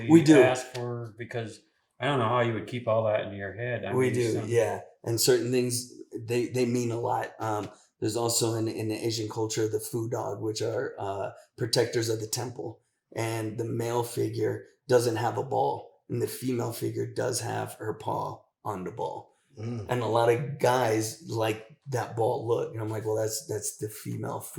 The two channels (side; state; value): both; identical; correlation 1.00